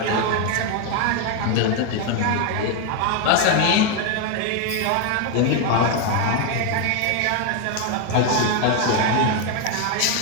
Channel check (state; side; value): different; both; correlation 0.01